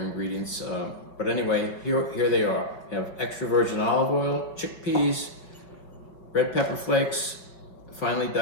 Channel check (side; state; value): right; late; 5.4 ms